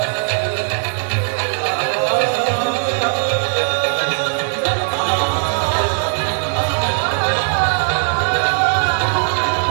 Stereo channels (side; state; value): left; silent; 67 dB below the other